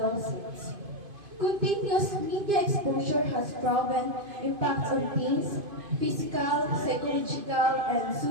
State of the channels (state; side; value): late; left; 2.5 ms